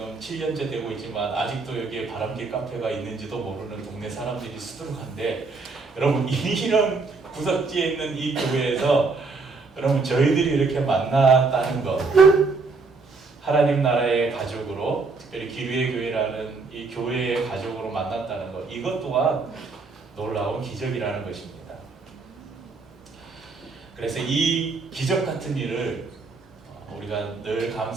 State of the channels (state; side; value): quieter; left; 4.1 dB